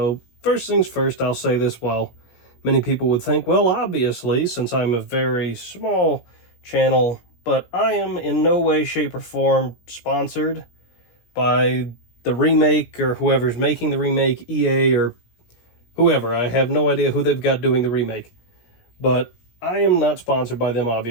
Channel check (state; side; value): late; right; 17 ms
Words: first things first, I'll say this, well, many people would think, well, obviously, since I'm a very small channel, but I am in no way, shape, or form sponsored by the remake or whoever's making the remake, EA or whoever. I have no idea who they've got doing the remake. But I am not sponsored by them,